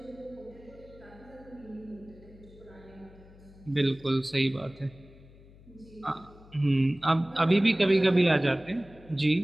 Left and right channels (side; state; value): left; noise; hum, 23 dB below the sound